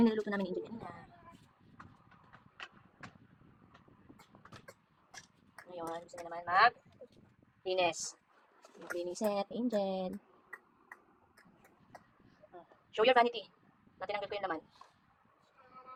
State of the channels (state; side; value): identical; both; correlation 1.00